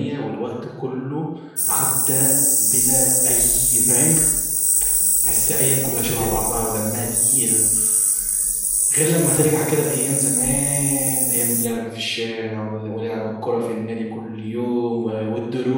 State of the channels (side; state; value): both; identical; correlation 1.00